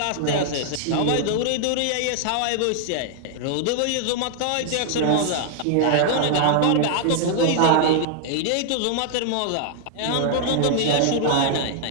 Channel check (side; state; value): both; different; correlation -0.01